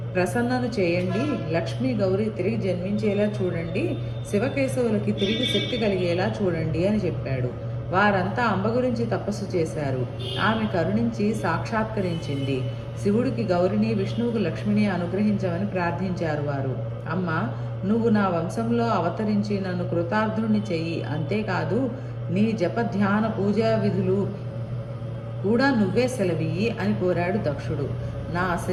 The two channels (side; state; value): both; identical; correlation 1.00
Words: ప్రసన్నను చేయండి, లక్ష్మీ గౌరీ తిరిగి జన్మించేలా చూడండి, శివకేశవులకి తిరిగి శక్తి కలిగేలా చూడండి అని చెప్పాడు. వారంతా అంబ గురించి తపస్సు చేశారు. ఆమె కరుణించి సాక్షాత్కరించింది. శివుడికి గౌరిని, విష్ణువుకు లక్ష్మిని అనుగ్రహించమని ప్రార్థించారు వారు. అమ్మ, నువ్వు నా వంశంలో అవతరించి నన్ను కృతార్థుని చెయ్యి. అంతేకాదు నీ జప ధ్యాన పూజా విధులు కూడా నువ్వే సెలవియ్యి అని కోరాడు దక్షుడు. నా